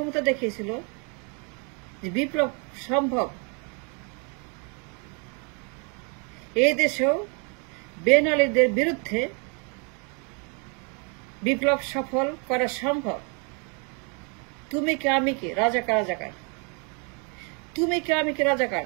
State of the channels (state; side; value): quieter; left; 35.9 dB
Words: দেখিয়েছিল যে বিপ্লব সম্ভব। এই দেশেও বেন আলীদের বিরুদ্ধে বিপ্লব সফল করা সম্ভব। তুমি কে আমি কে, রাজাকার রাজাকার, তুমি কে আমি কে, রাজাকার।